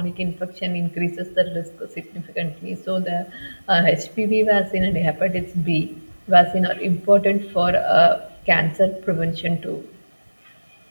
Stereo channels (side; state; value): both; inverted; correlation -1.00